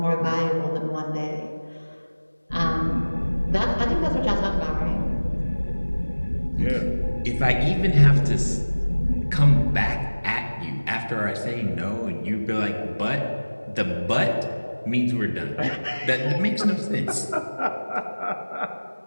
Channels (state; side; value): inverted; both; correlation -1.00